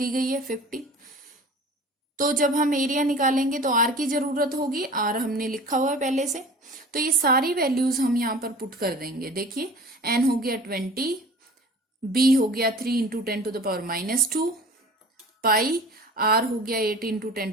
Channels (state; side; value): normal; both; correlation 0.42